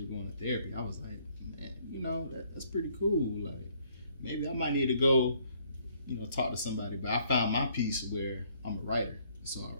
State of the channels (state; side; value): inverted; both; correlation -0.64